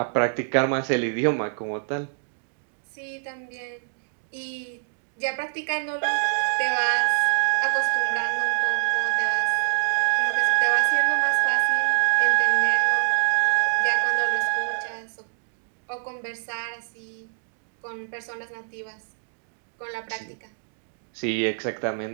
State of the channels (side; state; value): left; silent; digital silence